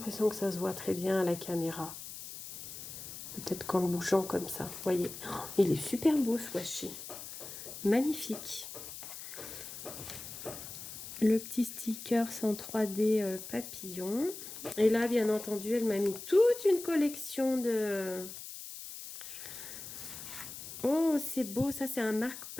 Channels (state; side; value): noise; left; hiss, 11 dB below the sound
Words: que ça se voit très bien à la caméra. Peut-être qu'en le bougeant comme ça, vous voyez. Oh, il est super beau ce washi. Magnifique. Le petit sticker en 3D papillon. Et là, bien entendu, elle m'a mis toute une collection de... Oh, c'est beau. Ça, c'est un